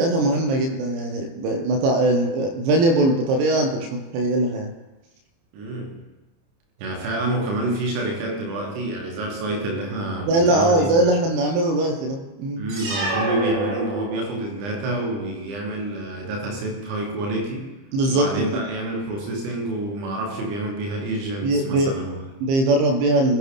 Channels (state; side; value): late; left; 30 ms